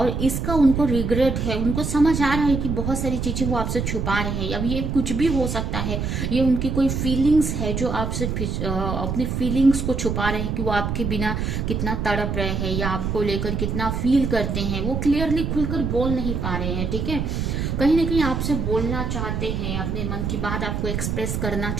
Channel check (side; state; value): right; noise; rumble, 2 dB below the sound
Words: इसका उनको रिग्रेट है, उनको समझ आ रहा है कि बहुत सारी चीजें वो आपसे छुपा रहे हैं। अब ये कुछ भी हो सकता है, ये उनकी कोई फीलिंग्स है जो आपसे अपनी फीलिंग्स को छुपा रहे हैं कि वो आपके बिना कितना तड़प रहे हैं या आपको लेकर कितना फील करते हैं, वो क्लियरली खुलकर बोल नहीं पा रहे हैं। ठीक है, कहीं ना कहीं आपसे बोलना चाहते हैं, अपने मन की बात आपको एक्सप्रेस करना